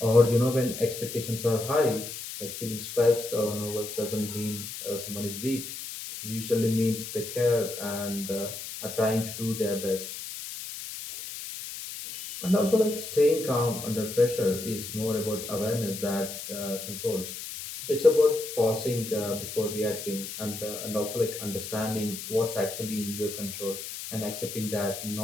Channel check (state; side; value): noise; left; hiss, 9 dB below the sound